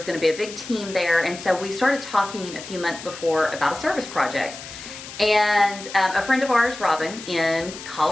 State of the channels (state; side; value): noise; left; hiss, 13 dB below the sound